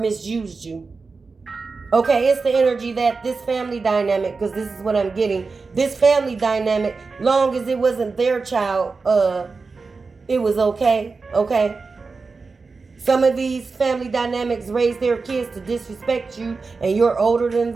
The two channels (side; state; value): left; quieter; 4.3 dB